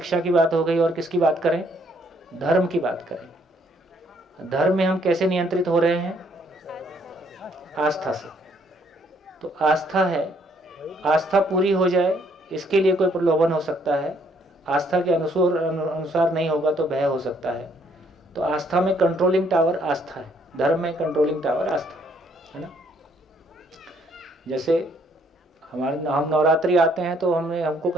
की बात हो गई, और किसकी बात करें? धर्म की बात करें। धर्म में हम कैसे नियंत्रित हो रहे हैं? आस्था से। तो आस्था है, आस्था पूरी हो जाए इसके लिए कोई प्रलोभन हो सकता है, आस्था के अनुसार नहीं होगा तो भय हो सकता है। तो आस्था में कंट्रोलिंग टावर आस्था है, धर्म में कंट्रोलिंग टावर आस्था है ना। जैसे हम नवरात्रि आते हैं तो हमको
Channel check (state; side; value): normal; both; correlation 0.67